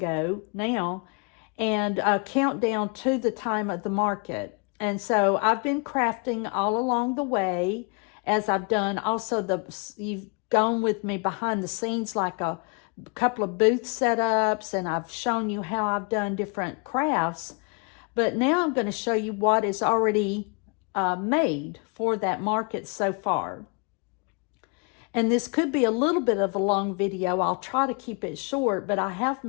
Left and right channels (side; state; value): right; quieter; 35.1 dB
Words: now, and a countdown to the time of the market. And so I've been crafting all along the way as I've done. Also, you've gone with me behind the scenes like a couple of booth setups, and I've shown you how I've done different crafts. But now I'm going to show you what is already made for that market so far. And this could be a little bit of a long video. I'll try to keep it short, but I have